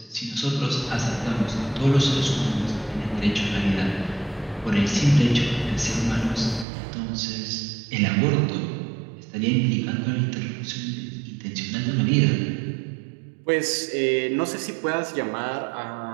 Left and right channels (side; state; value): left; drops out; at 6.7 s